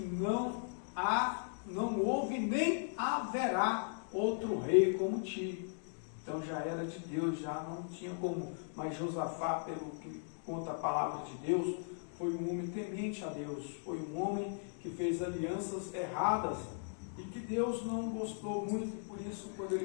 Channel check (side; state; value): right; silent; digital silence